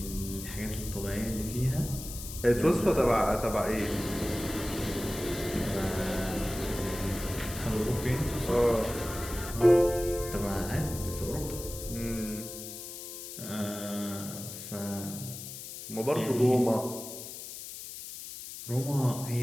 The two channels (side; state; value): left; noise; hiss, 10 dB below the sound